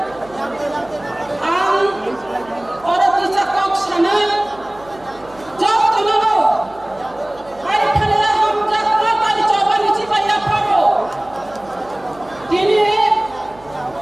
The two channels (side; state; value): right; noise; hum, 24 dB below the sound